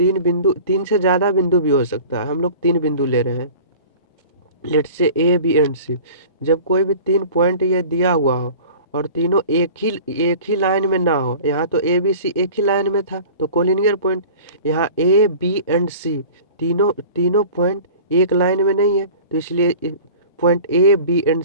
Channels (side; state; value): both; inverted; correlation -0.42